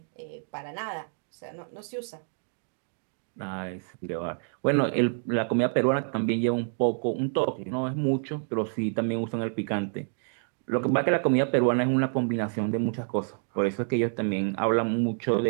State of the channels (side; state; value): left; silent; 59 dB below the other